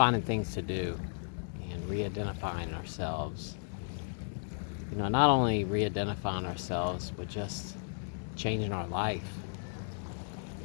things to do and re-identifying ourselves. Not only re-identifying ourselves, but just changing our life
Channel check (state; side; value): silent; right; digital silence